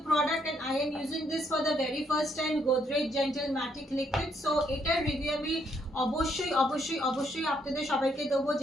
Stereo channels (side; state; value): both; normal; correlation 0.72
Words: product and I am using this for the very first time, Godrej Genteel Matic liquid. So এটার রিভিউ আমি অবশ্যই অবশ্যই অবশ্যই আপনাদের সবাইকে দেবো